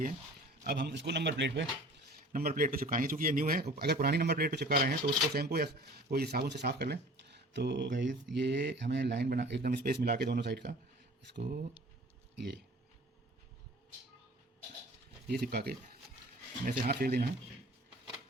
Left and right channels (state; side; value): normal; both; correlation 0.46